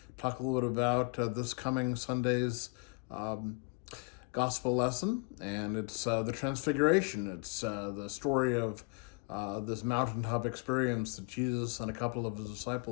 talk a little bit about this coming Sunday's gospel lesson, and it's the Transfiguration. It's the story of this mountaintop experience that Jesus and a couple of his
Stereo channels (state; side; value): quieter; right; 32.6 dB